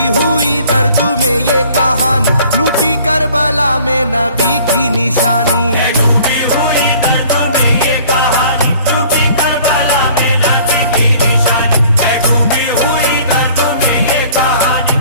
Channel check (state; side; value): inverted; both; correlation -0.53